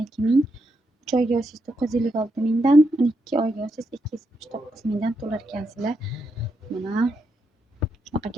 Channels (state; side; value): normal; both; correlation 0.81